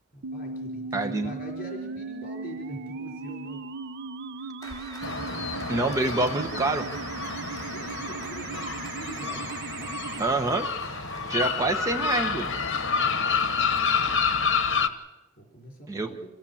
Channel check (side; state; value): both; normal; correlation 0.17